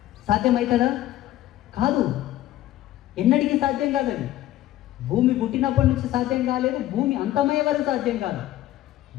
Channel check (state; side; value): quieter; right; 14.3 dB